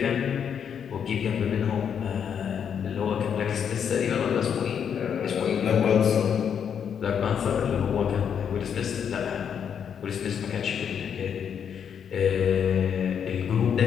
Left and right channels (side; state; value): right; quieter; 7.8 dB